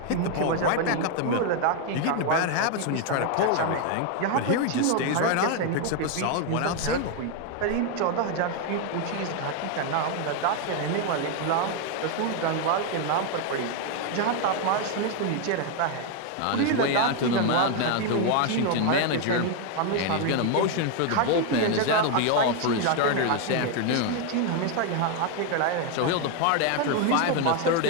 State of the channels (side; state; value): both; different; correlation 0.01